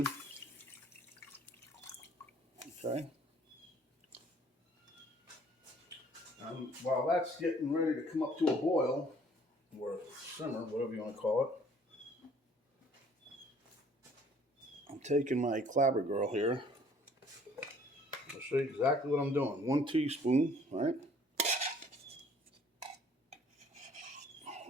Okay. And while that's getting ready to come up to a boil, or simmer, whatever you want to call it, I'm taking my clabber girl here. I'll show you exactly what I'm doing. 1 teaspoon, right?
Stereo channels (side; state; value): both; normal; correlation 0.57